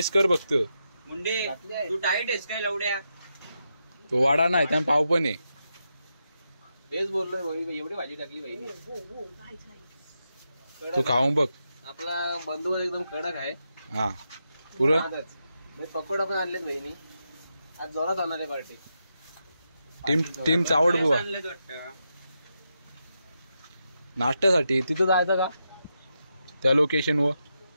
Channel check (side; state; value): both; inverted; correlation -0.86